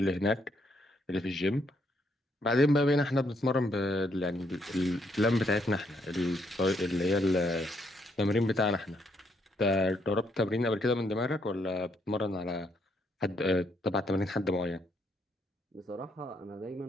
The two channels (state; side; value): normal; both; correlation 0.73